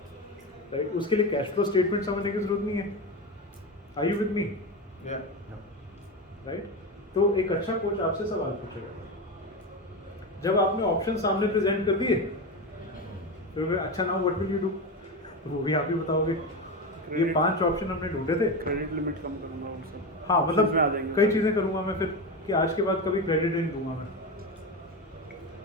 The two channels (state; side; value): normal; both; correlation 0.19